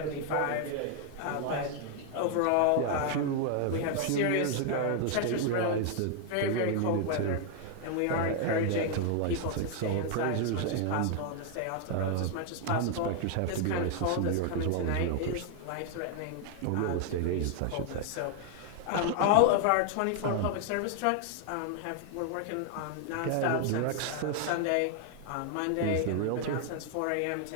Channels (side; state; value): both; different; correlation 0.00